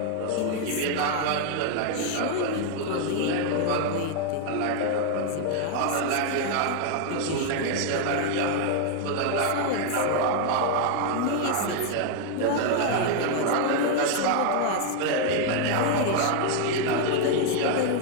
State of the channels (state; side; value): different; both; correlation 0.00